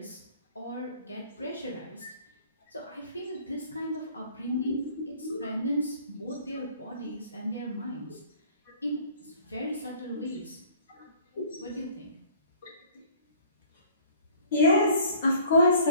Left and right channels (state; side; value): inverted; both; correlation -0.52